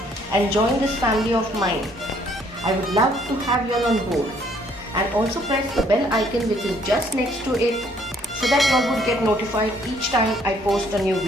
and join this family of mine. I would love to have you all on board, and also press the bell icon which is just next to it so that you all would get notified each time I post a new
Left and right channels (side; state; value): both; normal; correlation 0.64